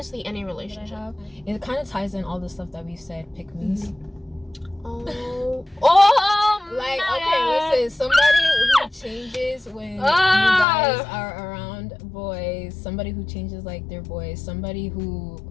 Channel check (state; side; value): drops out; right; at 10.7 s